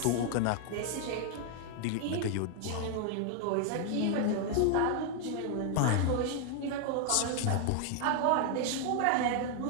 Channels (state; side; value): different; both; correlation 0.00